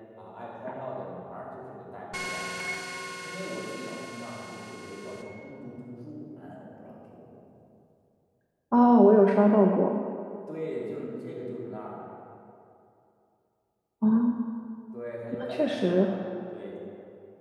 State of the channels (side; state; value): both; identical; correlation 1.00